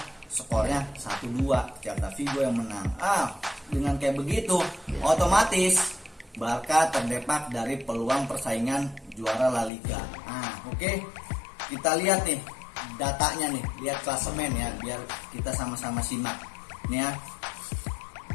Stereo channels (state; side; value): drops out; right; at 9.7 s